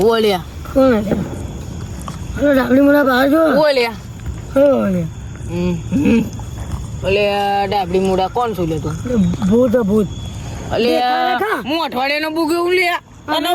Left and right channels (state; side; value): identical; both; correlation 1.00